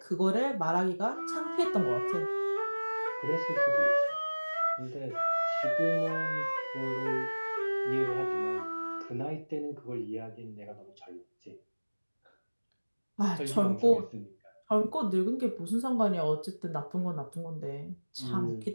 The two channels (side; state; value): both; inverted; correlation -1.00